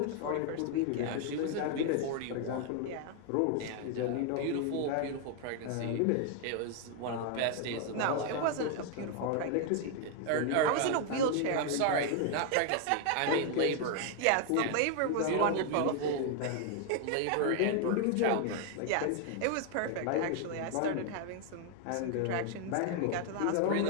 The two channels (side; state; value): both; different; correlation 0.00